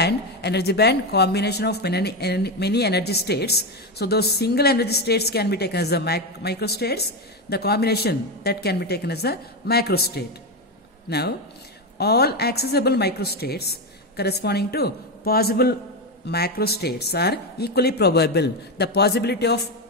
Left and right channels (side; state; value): both; normal; correlation 0.12